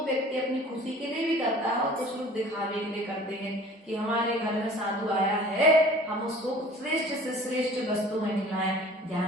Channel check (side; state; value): both; normal; correlation 0.46